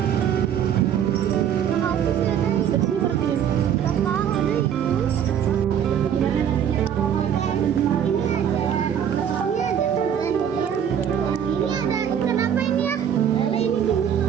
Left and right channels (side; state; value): left; quieter; 8.9 dB